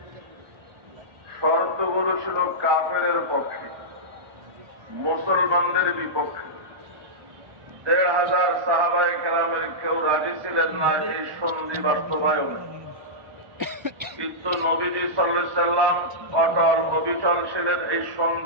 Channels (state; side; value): late; left; 1.4 ms